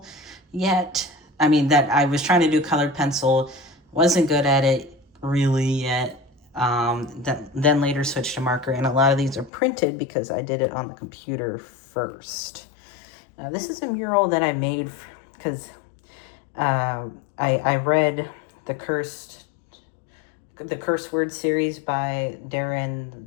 yet. I mean, that I was trying to do colored pencil, wasn't good at it really yet. Then later switched to marker, and a lot of these are printed because I did it on the computer first. This is a mural that I made because I read the Curse Word series by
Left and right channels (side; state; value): right; drops out; at 9.5 s